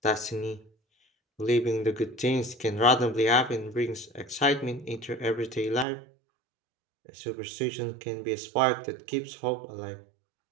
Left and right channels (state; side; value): drops out; left; at 5.9 s